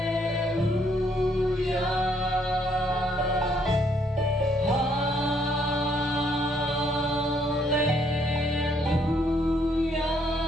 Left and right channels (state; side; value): normal; both; correlation 0.69